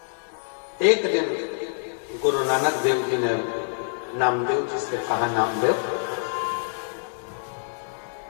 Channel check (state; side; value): silent; right; digital silence